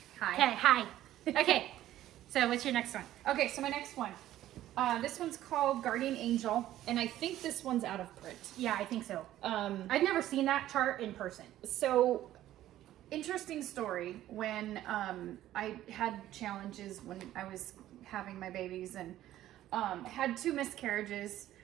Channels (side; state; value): left; quieter; 13.5 dB